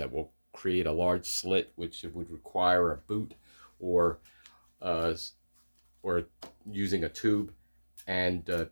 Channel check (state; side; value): inverted; both; correlation -1.00